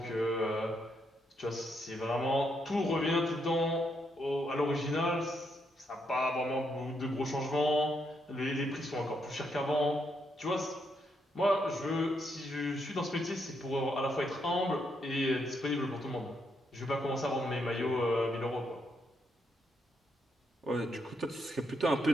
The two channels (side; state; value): both; normal; correlation 0.78